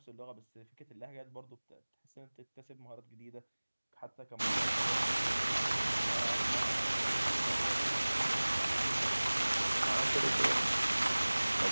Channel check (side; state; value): both; inverted; correlation -1.00